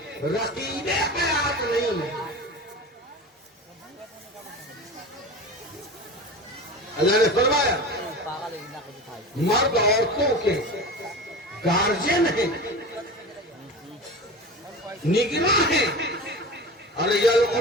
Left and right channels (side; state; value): both; normal; correlation 0.31